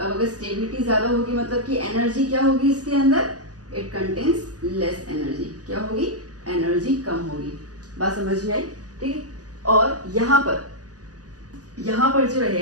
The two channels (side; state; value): left; late; 0.67 ms